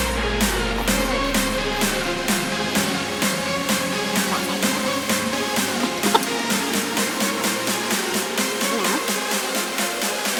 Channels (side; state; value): both; identical; correlation 1.00